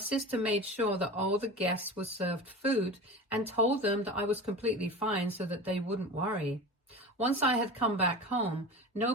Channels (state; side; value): normal; both; correlation 0.32